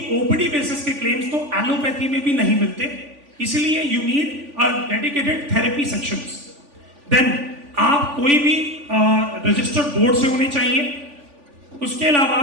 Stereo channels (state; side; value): late; left; 3.5 ms